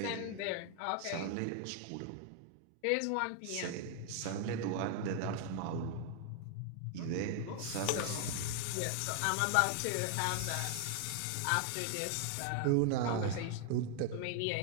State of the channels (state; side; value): different; both; correlation 0.00